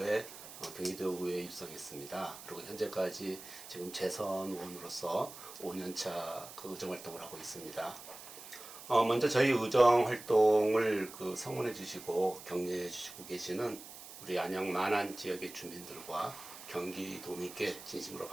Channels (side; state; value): right; noise; hiss, 15 dB below the sound